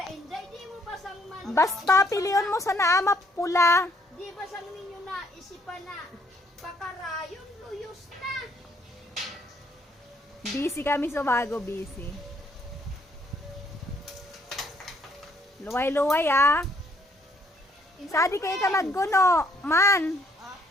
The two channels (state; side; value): normal; both; correlation 0.67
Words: Inday, di mo basang man. Basta piliyon mo sa naama pula. Di basang ninyo na isipan na pakarayon luyos na. Busy kami sa bago, busy. Luway-luway ah. Sadi kayo ka magguno, man.